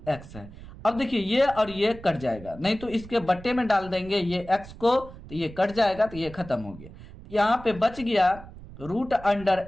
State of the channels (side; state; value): right; noise; rumble, 16 dB below the sound